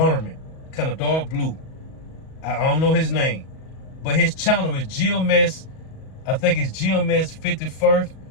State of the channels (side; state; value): right; late; 38 ms